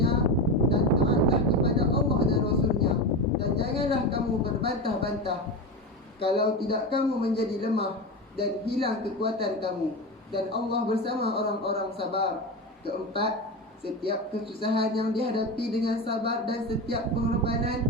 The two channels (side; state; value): both; normal; correlation 0.21